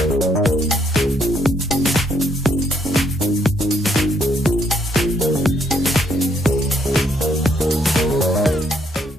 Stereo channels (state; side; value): normal; both; correlation 0.71